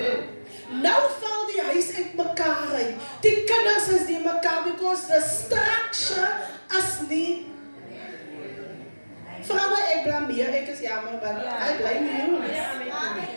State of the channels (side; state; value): both; inverted; correlation -1.00